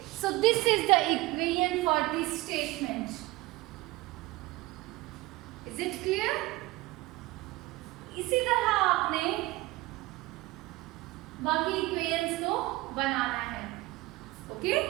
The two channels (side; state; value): left; quieter; 20.1 dB